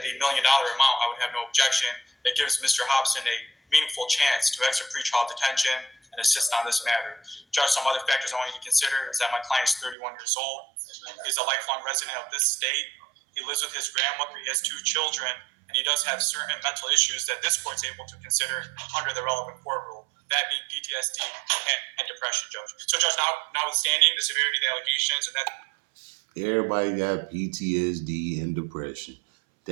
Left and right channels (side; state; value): left; drops out; at 10.0 s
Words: $1 million amount, I would have no objection. It gives Mr. Hobson a meaningful chance to exit pretrial detention and assist on this matter. Judge, some other factors I want you to consider is that my client is 31 years old. He's a lifelong resident of this state. He lives with his grandmother. He has 2 children, and he does have certain mental issues that this court's able to consider under the relevant court rule. That being PTSD and depression, Judge. So, Judge, notwithstanding the severity of the allegations and that. Everybody got PTSD and depression.